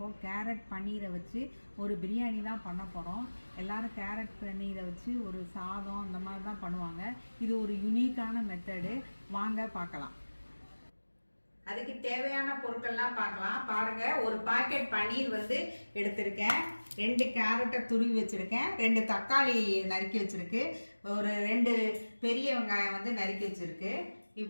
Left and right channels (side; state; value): both; inverted; correlation -1.00